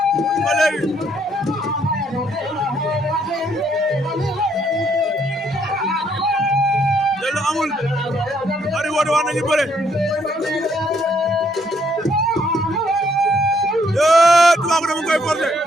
ba léegi jël amul ari woote wax nañu bëre Toubacouta mu koy forcé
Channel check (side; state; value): both; normal; correlation 0.69